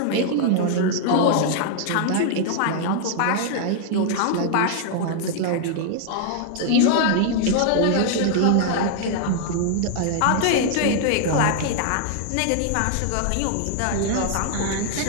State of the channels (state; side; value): different; both; correlation 0.00